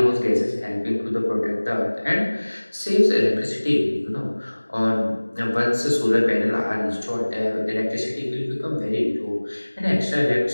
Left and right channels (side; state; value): both; inverted; correlation -1.00